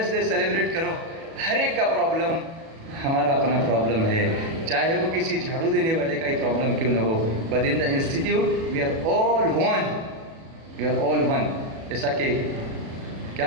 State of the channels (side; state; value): left; late; 37 ms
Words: डे सेलिब्रेट करो, हर एक का प्रॉब्लम हमारा अपना प्रॉब्लम है, चाहे वो किसी झाड़ू देने वाले का ही प्रॉब्लम क्यों ना हो। But in the institute we are all one, we are all one. जैसा कि क्या